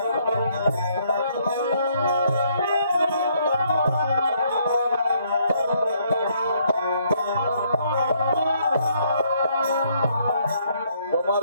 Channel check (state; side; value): inverted; both; correlation -0.69